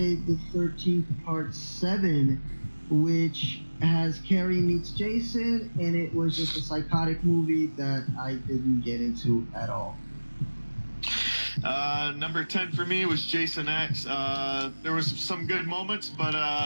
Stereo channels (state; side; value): inverted; both; correlation -1.00